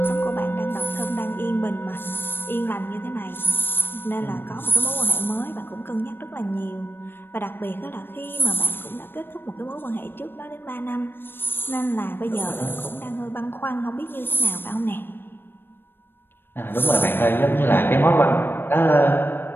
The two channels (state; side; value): late; right; 0.099 ms